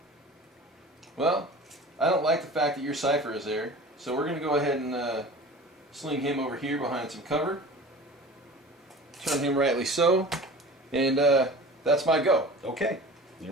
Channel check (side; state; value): both; normal; correlation 0.39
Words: Well, I don't like the fact that your Cypher is there. So we're going to go ahead and sling him over here behind some cover. Turn him rightly so. And that's my go. Okay, there